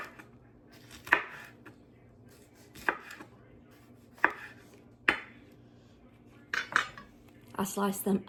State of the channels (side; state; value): both; identical; correlation 1.00